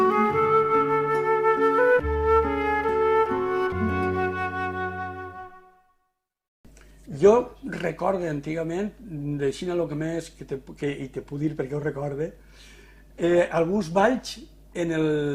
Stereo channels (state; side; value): identical; both; correlation 1.00